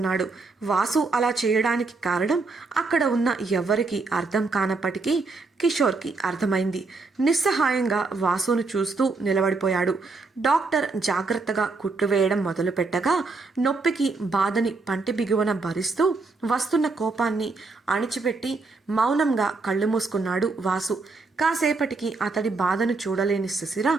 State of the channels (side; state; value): left; quieter; 3.9 dB